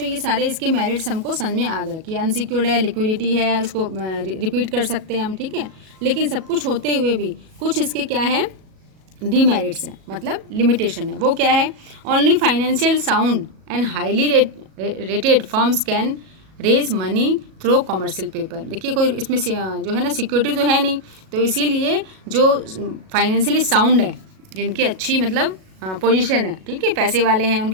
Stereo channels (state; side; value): late; left; 37 ms